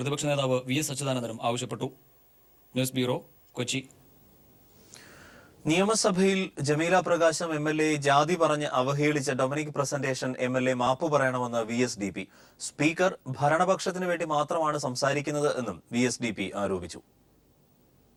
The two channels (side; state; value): both; identical; correlation 1.00